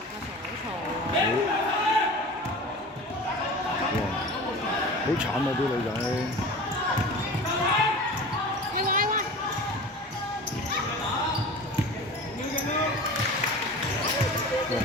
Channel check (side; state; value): both; normal; correlation 0.36